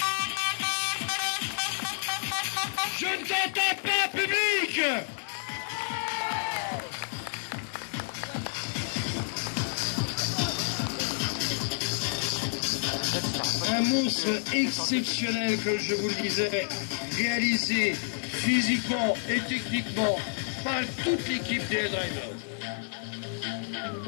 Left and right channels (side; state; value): right; silent; digital silence